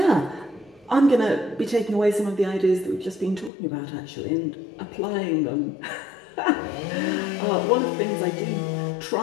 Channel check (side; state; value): right; drops out; at 3.5 s